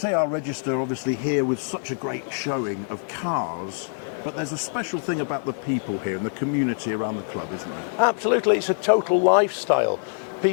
Register obviously here with such a great showing of cars, but there's a special thing about the people here and the community around the club, isn't there? Absolutely, it's a total lifestyle.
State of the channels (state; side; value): silent; right; 62 dB below the other